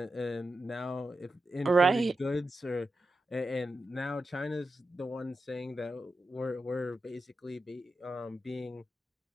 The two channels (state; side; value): normal; both; correlation 0.89